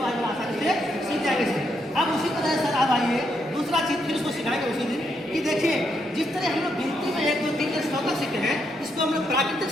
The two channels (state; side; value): normal; both; correlation 0.78